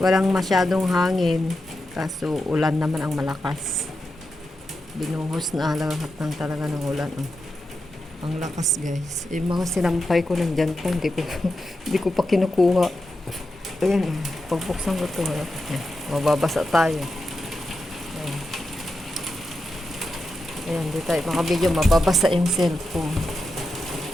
masyadong hangin. Kaso, ulan naman ang malakas. Binuhos na lahat ng talaga ng ulan. Oh. Ang lakas, guys. Yung mga sinampay ko nandyan pa. Hindi ko pa kinukuha. Ayan, pagbuksan ko ito. Mababasa tayo. Ayan, di tayo makabidyo. Mababasa yung cellphone.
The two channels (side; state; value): both; normal; correlation 0.88